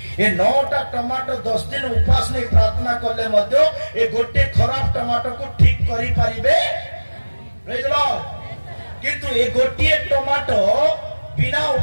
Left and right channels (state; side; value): inverted; both; correlation -1.00